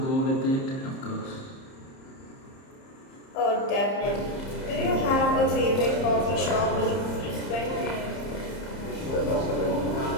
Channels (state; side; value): late; right; 30 ms